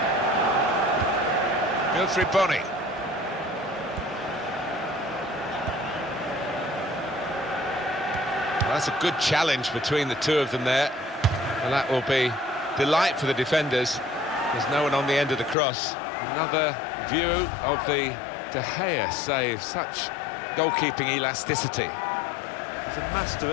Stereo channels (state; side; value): drops out; right; at 15.6 s